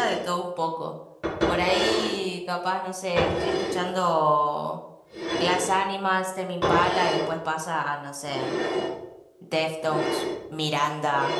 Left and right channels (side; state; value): both; identical; correlation 1.00